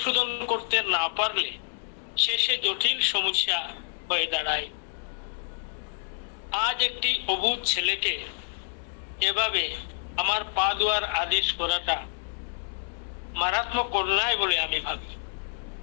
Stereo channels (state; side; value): silent; right; digital silence